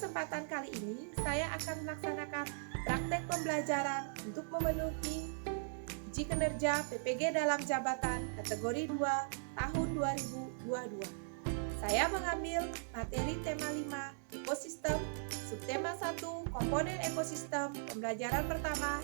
kali ini, saya akan melaksanakan praktek pembelajaran untuk memenuhi uji kinerja PPG dalam jabatan kategori 2 tahun 2022. Saya mengambil materi tema 5 ekosistem, subtema 1 komponen ekosistem, pembelajaran pertama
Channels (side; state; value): left; silent; 52 dB below the other